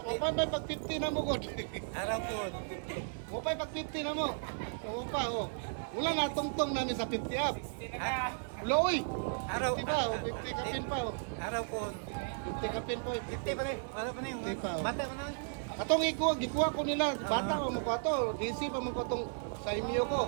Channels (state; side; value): silent; left; digital silence